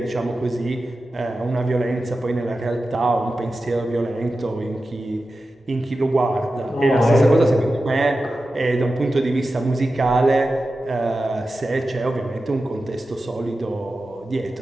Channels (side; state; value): both; normal; correlation 0.93